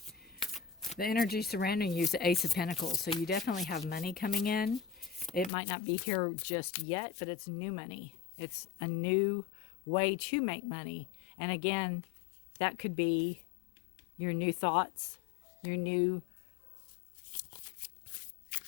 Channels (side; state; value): right; drops out; at 5.5 s